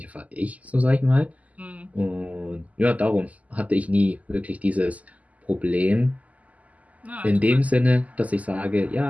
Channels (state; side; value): late; left; 0.073 ms